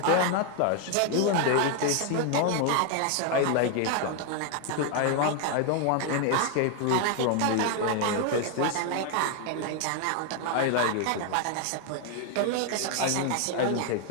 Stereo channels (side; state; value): both; different; correlation 0.00